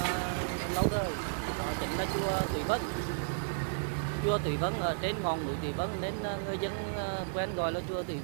lâu đời. Đó chính là chùa Thủy Vân. Chùa Thủy Vân ở trên ngọn núi Thủy Vân nên người dân quen gọi là chùa Thủy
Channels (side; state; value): left; silent; digital silence